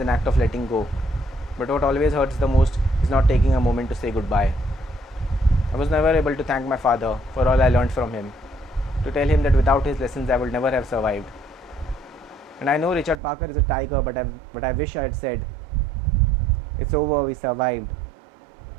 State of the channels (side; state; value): left; drops out; at 13.2 s